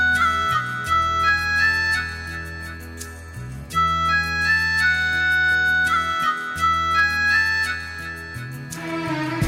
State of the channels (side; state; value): both; identical; correlation 1.00